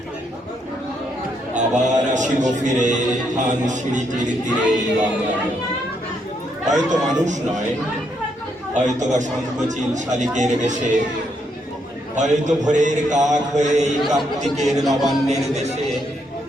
আবার আসিব ফিরে ধান সিঁড়িটির তীরে বাংলায়। হয়তো মানুষ নয়, হয়তো বা সংকোচিল শালিকের বেশে, হয়তো ভোরের কাক হয়ে এই কার্তিকের নবান্নের দেশে।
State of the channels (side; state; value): both; normal; correlation 0.76